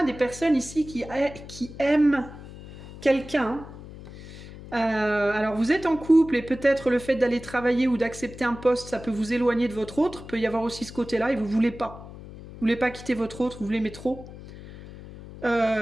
des personnes ici qui aiment quelqu'un. Alors vous êtes en couple et peut-être le fait d'aller travailler ou d'accepter un poste, ça peut vous éloigner de votre autre. Il peut y avoir aussi ce côté-là et vous voulez pas. Vous voulez pas quitter votre autre, vous l'aimez trop.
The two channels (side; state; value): left; noise; hum, 15 dB below the sound